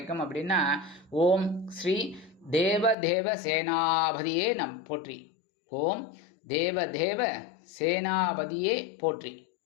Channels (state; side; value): drops out; right; at 3.0 s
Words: அப்படின்னா ஓம் ஸ்ரீ தேவ சேனாபதியே போற்றி. ஓம் தேவ சேனாபதியே போற்றி.